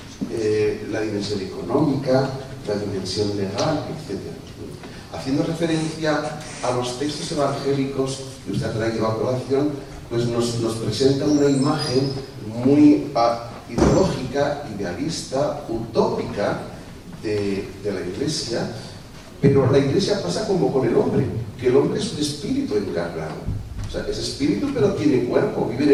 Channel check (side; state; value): both; identical; correlation 1.00